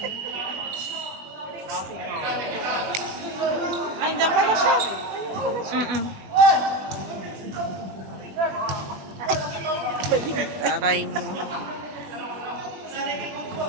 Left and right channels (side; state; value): left; late; 21 ms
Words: Ay, dyan pala siya. Mm-mm. Taray mo.